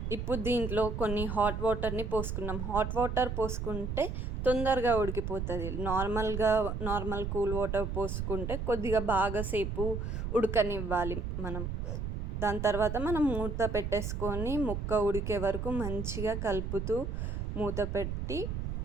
ఇప్పుడు దీంట్లో కొన్ని హాట్ వాటర్ని పోసుకున్నాం. హాట్ వాటర్ పోసుకుంటే తొందరగా ఉడికిపోతుంది. నార్మల్ కూల్ వాటర్ పోసుకుంటే కొద్దిగా బాగా సేపు ఉడకనివ్వాలి మనం. దాని తర్వాత మనం మూత పెట్టేసుకొని ముక్క ఉడికే వరకు మంచిగా కలుపుతూ మూత పెట్టి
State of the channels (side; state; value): right; noise; rumble, 3 dB below the sound